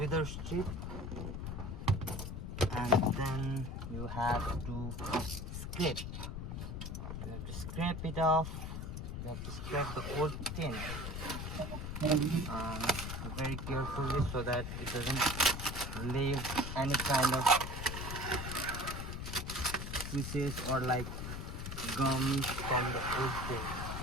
strip, and then you have to scrape. You have to scrape it off. You have to scrape the old tint very carefully so that it doesn't leave any kind of pieces or like gums from the old tint.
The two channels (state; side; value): noise; left; rumble, 5 dB below the sound